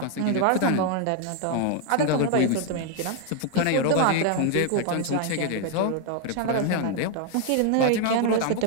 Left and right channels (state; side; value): different; both; correlation 0.00